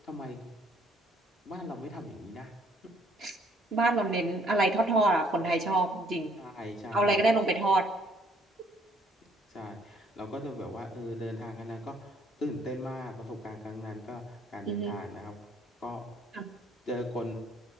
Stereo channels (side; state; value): both; normal; correlation 0.64